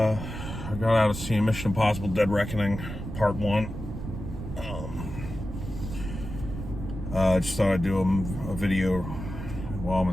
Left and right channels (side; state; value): right; noise; rumble, 8 dB below the sound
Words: seeing Mission Impossible: Dead Reckoning Part One. I just thought I'd do a video while I'm